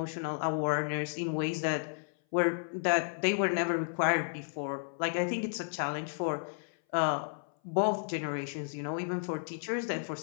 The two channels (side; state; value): right; silent; 56 dB below the other